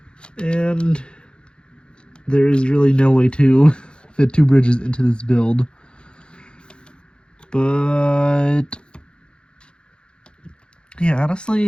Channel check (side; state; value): right; late; 0.052 ms